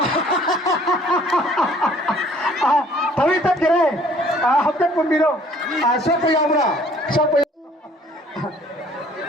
तवी तक करे हफ्ते पुंबिरो सब यावरा सब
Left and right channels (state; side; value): normal; both; correlation 0.56